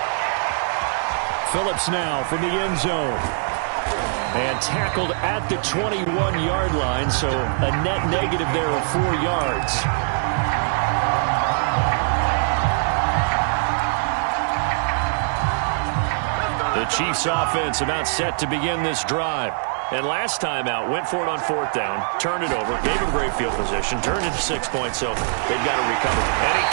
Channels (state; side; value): silent; left; digital silence